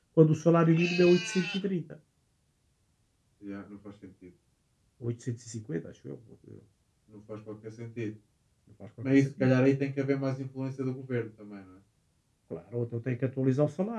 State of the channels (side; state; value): both; identical; correlation 1.00